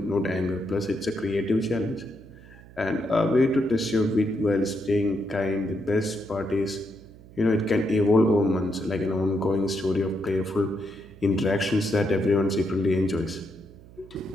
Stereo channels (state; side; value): noise; right; hum, 21 dB below the sound